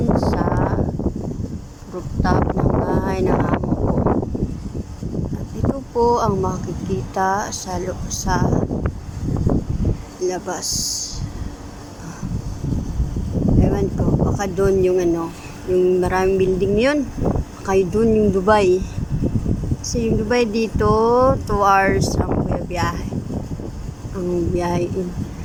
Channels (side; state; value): both; identical; correlation 1.00